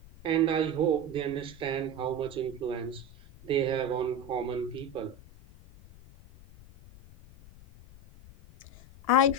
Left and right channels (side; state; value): left; noise; rumble, 21 dB below the sound